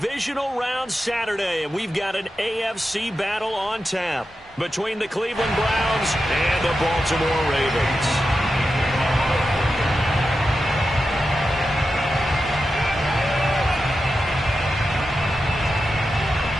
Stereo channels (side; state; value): both; normal; correlation 0.90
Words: Round Saturday, and we've got an AFC battle on tap between the Cleveland Browns and the Baltimore Ravens.